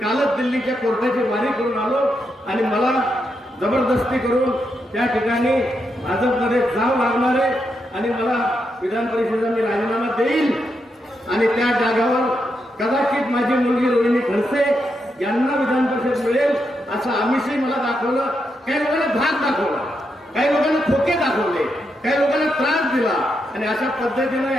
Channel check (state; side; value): normal; both; correlation 0.83